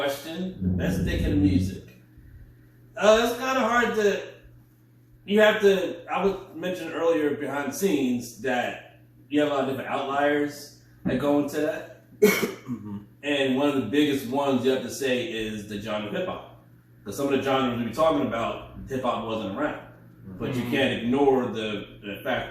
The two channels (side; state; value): both; identical; correlation 1.00